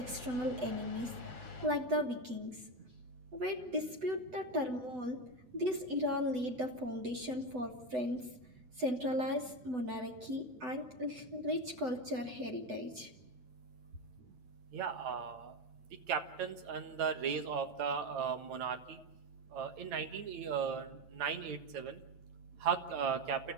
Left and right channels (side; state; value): left; late; 8.0 ms